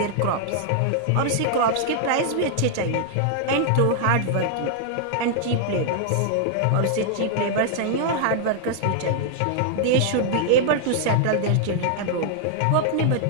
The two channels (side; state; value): both; different; correlation 0.00